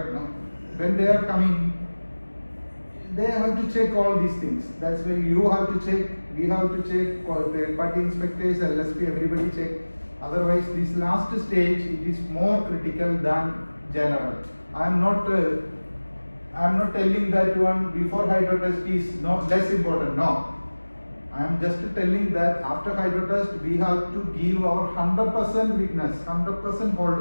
No? When they are coming, they have to check all these things. That's why you have to check, we have to check, third-party inspectors, LSP, everybody check. Otherwise, this last stage, it is more critical than general. I am not telling that one before hydro test is less important. No, I am just telling that after hydro test, we have to give our 100% witness, 100%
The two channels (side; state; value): both; inverted; correlation -1.00